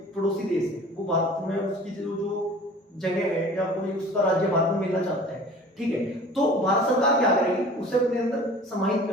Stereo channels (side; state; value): both; normal; correlation 0.44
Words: पड़ोसी देश है, वो भारत में उसकी जो जगह है या कोई उसका राज्य भारत में मिलना चाहता है, ठीक है, तो भारत सरकार क्या करेगी, उसे अपने अंदर समाहित